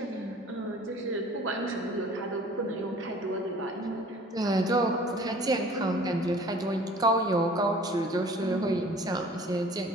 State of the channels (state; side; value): normal; both; correlation 0.49